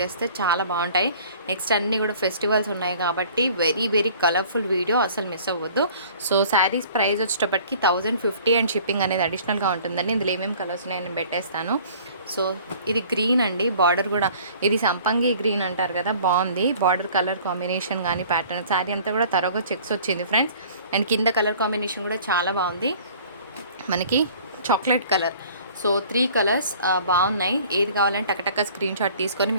చేస్తే చాలా బాగుంటాయి. నెక్స్ట్ అన్నీ కూడా ఫెస్టివల్స్ ఉన్నాయి కాబట్టి వెరీ వెరీ కలర్ఫుల్ వీడియో, అసలు మిస్ అవ్వద్దు. సో శారీస్ ప్రైస్ వచ్చేటప్పటికి 1050 అండ్ షిప్పింగ్ అనేది అడిషనల్గా ఉంటుందండి. ఇందులో ఏమేమి కలర్స్ ఉన్నాయో నేను పెట్టేస్తాను. సో ఇది గ్రీన్ అండి, బార్డర్ కూడా ఇది సంపంగి గ్రీన్ అంటారు కదా, బాగుంది బార్డర్ కలర్ కాంబినేషన్ కానీ ప్యాటర్న్. శారీ అంతా కూడా తరగా చెక్స్ వచ్చింది ఫ్రెండ్స్. అండ్ కింద కలర్ కాంబినేషన్ కూడా చాలా బాగుంది, మనకి చాక్లెట్ కలర్. సో 3 కలర్స్ బాగున్నాయి. ఏది కావాలంటే టకటక స్క్రీన్ షాట్ తీసుకొని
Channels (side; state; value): both; inverted; correlation -0.51